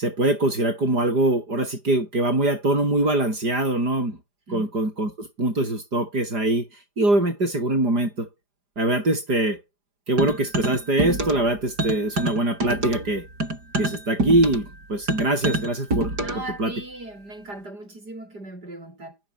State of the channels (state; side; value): late; left; 4.9 ms